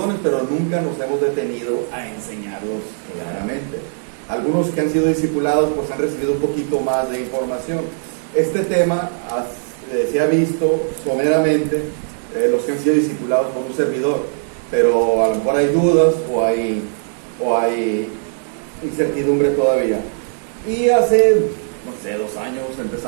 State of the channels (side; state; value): left; silent; digital silence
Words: pero nunca nos hemos detenido a enseñarlos claramente. Algunos que han sido discipulados pues han recibido un poquito más de información. Este tema se ha visto someramente los que han sido discipulados por un servidor, pero a lo mejor hay dudas o hay incertidumbre todavía. Y hace, no sé, 2 años